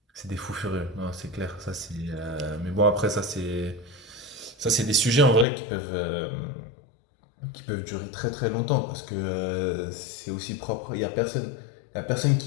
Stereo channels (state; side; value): drops out; right; at 5.5 s